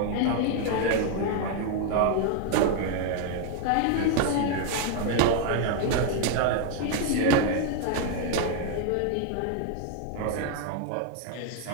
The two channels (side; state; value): both; different; correlation 0.00